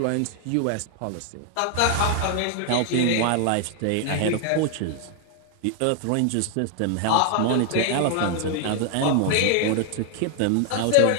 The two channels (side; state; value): both; different; correlation 0.00